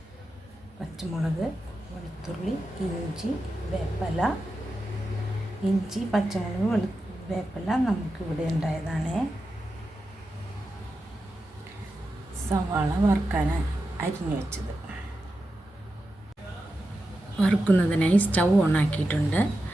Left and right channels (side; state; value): both; normal; correlation 0.90